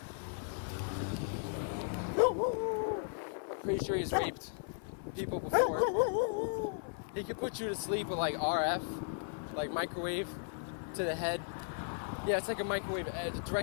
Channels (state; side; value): silent; right; 54 dB below the other